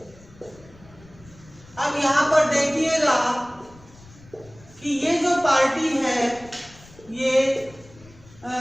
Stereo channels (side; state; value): left; noise; rumble, 23 dB below the sound